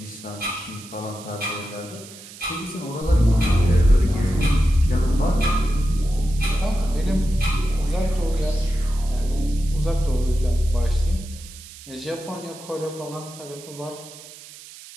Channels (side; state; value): right; noise; hiss, 17 dB below the sound